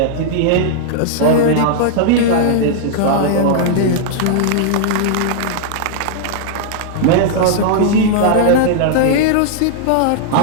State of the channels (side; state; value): both; different; correlation -0.01